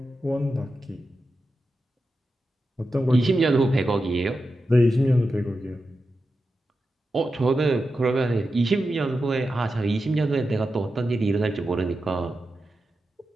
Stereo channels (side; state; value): both; normal; correlation 0.90